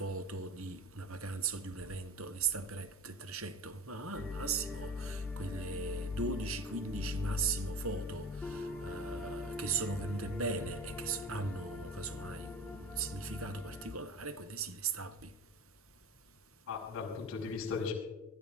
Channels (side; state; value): both; normal; correlation 0.35